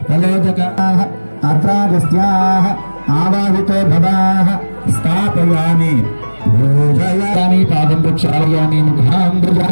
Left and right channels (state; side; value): inverted; both; correlation -1.00